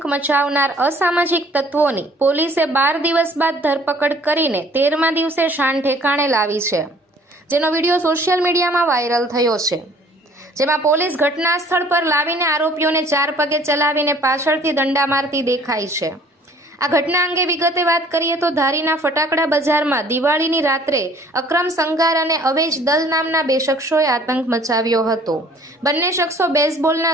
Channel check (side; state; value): both; normal; correlation 0.55